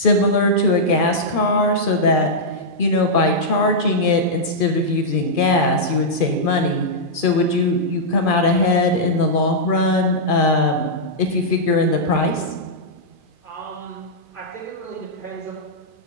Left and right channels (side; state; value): left; late; 2.4 ms